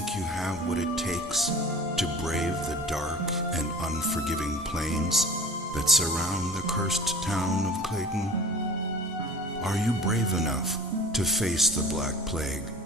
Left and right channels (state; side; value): normal; both; correlation 0.41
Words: you have what it takes to brave the dark and unforgiving plains that surround the cursed town of Platin? Are you brave enough to face the Black Plague